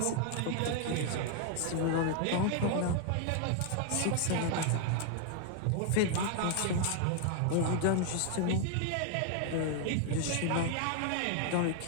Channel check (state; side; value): different; both; correlation 0.00